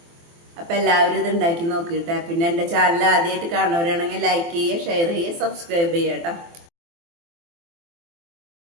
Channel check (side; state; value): left; late; 24 ms